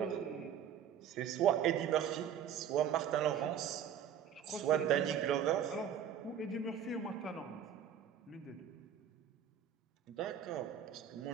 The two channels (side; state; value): left; quieter; 8.9 dB